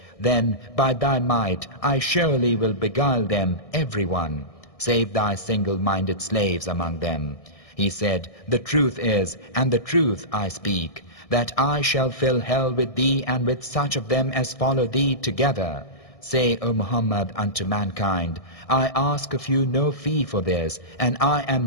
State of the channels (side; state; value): right; late; 1.6 ms